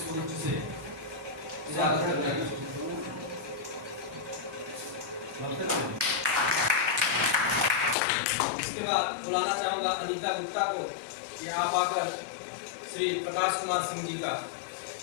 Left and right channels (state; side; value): drops out; right; at 8.0 s